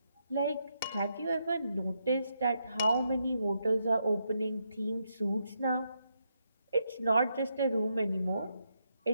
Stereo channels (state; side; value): inverted; both; correlation -0.80